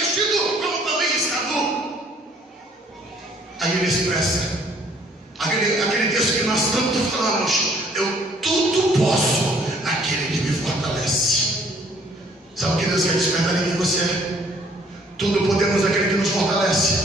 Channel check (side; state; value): both; normal; correlation 0.60